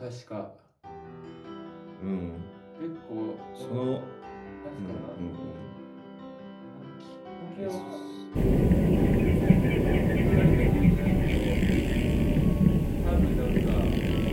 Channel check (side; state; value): both; identical; correlation 1.00